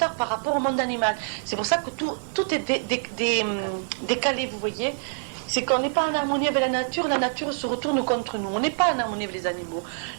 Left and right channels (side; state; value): left; silent; digital silence